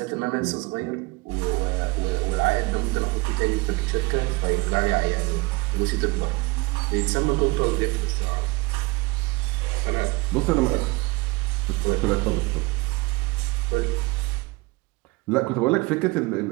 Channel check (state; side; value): quieter; left; 24.5 dB